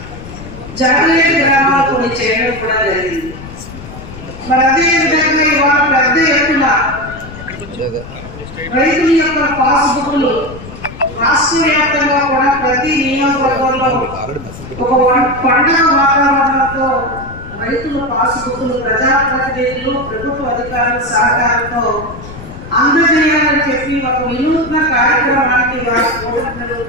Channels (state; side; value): noise; left; rumble, 14 dB below the sound